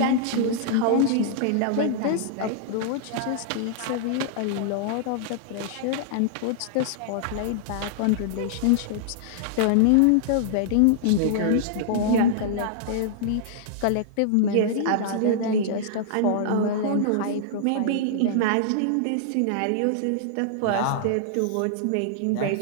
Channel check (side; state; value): both; different; correlation -0.01